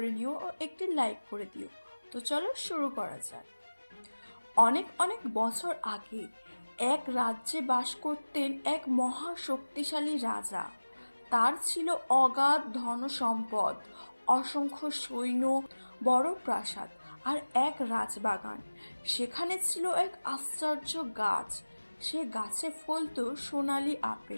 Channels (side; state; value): both; inverted; correlation -1.00